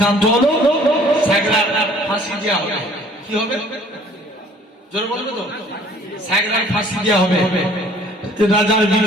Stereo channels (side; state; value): both; normal; correlation 0.55